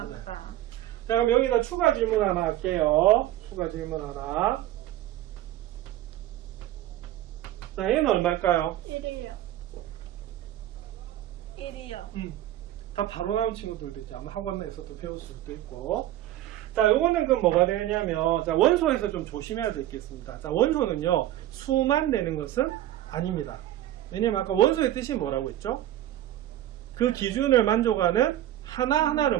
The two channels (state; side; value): quieter; left; 13.5 dB